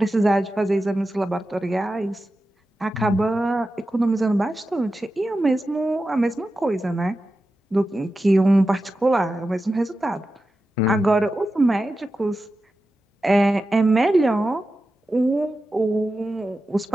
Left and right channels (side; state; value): both; normal; correlation 0.92